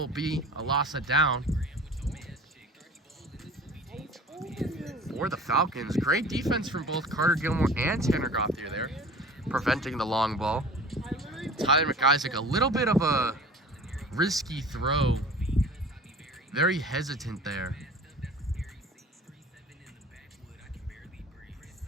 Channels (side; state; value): both; normal; correlation 0.42